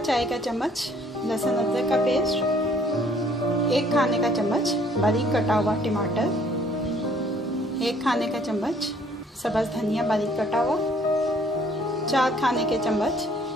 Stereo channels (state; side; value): normal; both; correlation 0.60